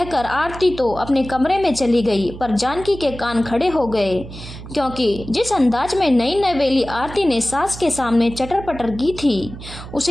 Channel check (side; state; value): right; noise; hum, 13 dB below the sound